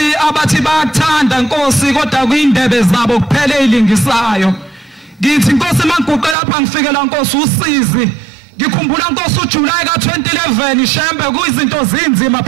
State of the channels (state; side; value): drops out; left; at 6.4 s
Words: abathi bayathanda Nkosi kodwa kuyindebe zabo kuphela ezilingisayo. Ngithi Nkosi mangiguqe lapha ngifikela Nkosi usizi. Ngikhumbula Nkosi uJuly ka2011 Shembe kuyizinto zinzima